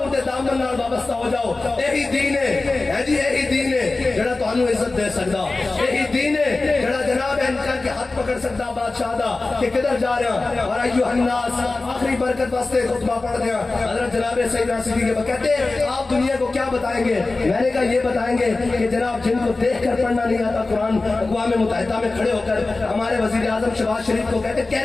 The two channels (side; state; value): right; quieter; 3.4 dB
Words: دے دامن نال وابستہ ہو جاؤ یہی دین ہے جی یہی دین ہے جڑا تانوں عزت دے سکدا یہی دین ہے جڑا جناب ان کے ہاتھ پکڑ سکتا بادشاہ دا کہ کدھر جا رہا اور ایھا الناس آخری برکت واسطے خطبہ پڑھ دیا حضرت جناب سیدنا صدیق کے کہتے ہیں آپ دنیا کو کیا بتائیں گے میں نے کہا یہ بتائیں گے کہ جناب جن کو دیکھ کر پڑھنا نہیں آتا قرآن اقوام متحدہ میں کھڑے ہو کر ہمارے وزیر اعظم شہباز شریف کو کہتے ہیں